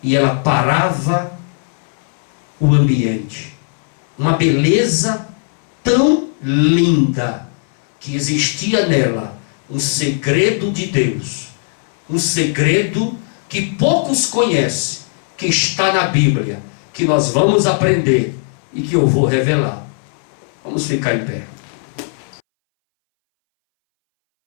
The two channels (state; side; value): silent; right; 64 dB below the other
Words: e ela parava o ambiente. Uma beleza tão linda que existia nela um segredo de Deus, um segredo que poucos conhecem, que está na Bíblia, que nós vamos aprender e que eu vou revelar. Vamos ficar em pé.